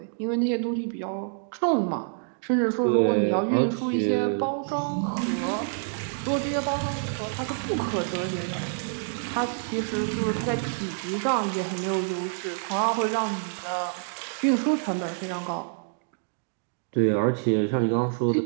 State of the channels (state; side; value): silent; left; digital silence